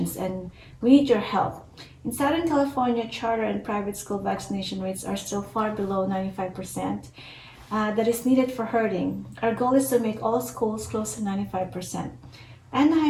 and we need your help. In Southern California, charter and private school vaccination rates are still far below 95%. That is needed for herding. Our goal is to make all schools close to 95%.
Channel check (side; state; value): both; identical; correlation 1.00